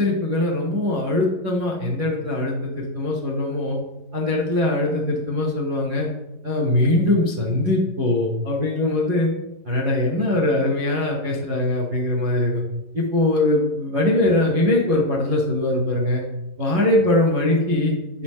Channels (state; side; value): late; left; 11 ms